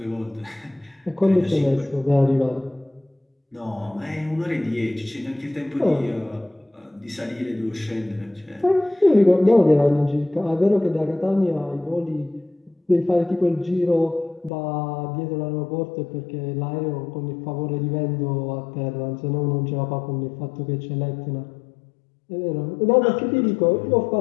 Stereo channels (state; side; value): drops out; right; at 14.5 s